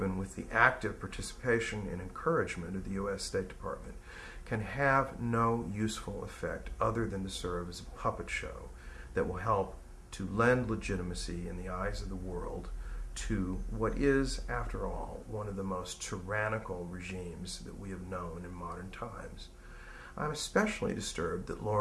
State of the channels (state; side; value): identical; both; correlation 1.00